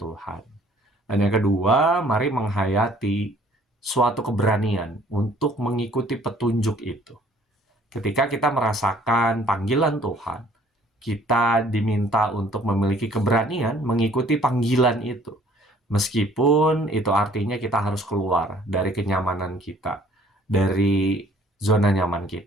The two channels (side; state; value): both; normal; correlation 0.57